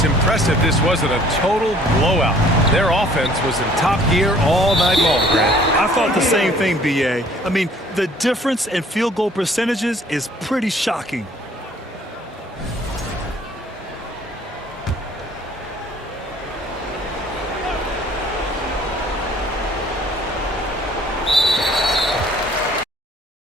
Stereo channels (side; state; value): both; normal; correlation 0.56